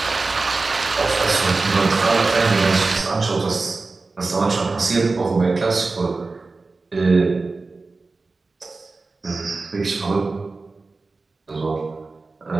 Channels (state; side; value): quieter; left; 3.7 dB